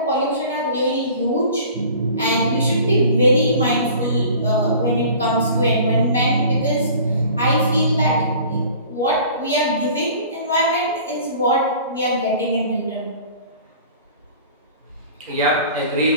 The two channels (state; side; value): inverted; both; correlation -0.46